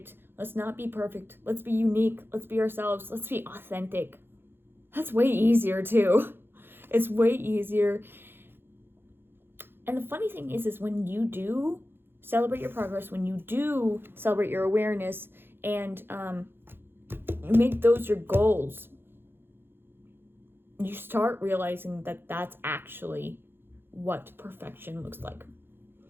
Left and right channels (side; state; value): left; late; 0.10 ms